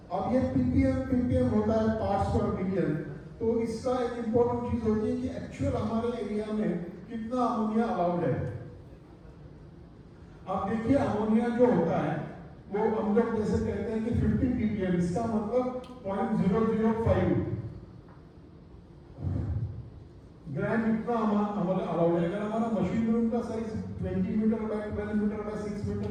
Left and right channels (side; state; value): both; identical; correlation 1.00